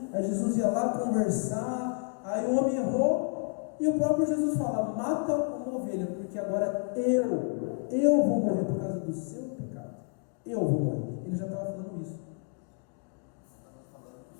aí Jesus ia lá conversar, Aí o homem errou e o próprio Jesus fala: mata uma ovelha, porque agora eu vou morrer por causa do seu pecado. Eu vou morrer. Ele já estava falando isso. Estava falando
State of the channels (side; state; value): right; quieter; 38.5 dB